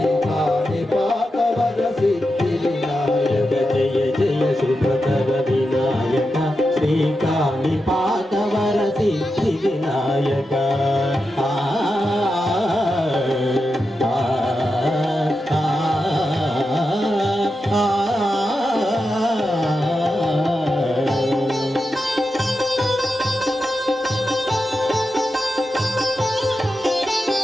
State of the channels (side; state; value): both; normal; correlation 0.89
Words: పాదవరసి వినాయక జయ జయ శుభకర వినాయక శ్రీకాళి పాదవరసి వినాయక